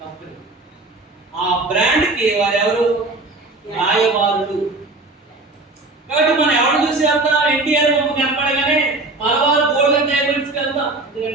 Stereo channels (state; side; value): quieter; left; 3.1 dB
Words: కంపెనీ. ఆ బ్రాండ్ కి వారు ఎవరు? రాయబారులు. కాబట్టి మనం ఎవరు చూసి వెళ్తాం? ఎన్టీఆర్ బొమ్మ కనపడగానే మలబార్ గోల్డెన్ డైమండ్స్కి వెళ్తాం,